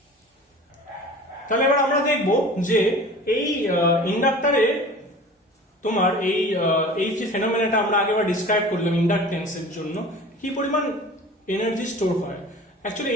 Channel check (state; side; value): normal; both; correlation 0.40